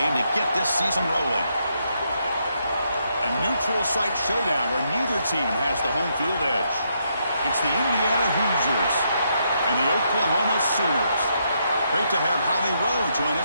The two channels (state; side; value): inverted; both; correlation -0.77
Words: to get this season rolling. A neutral site showdown where neither team has the home field edge. It's the Indiana Hoosiers and the Oklahoma Sooners. Great to have Holly Rowe join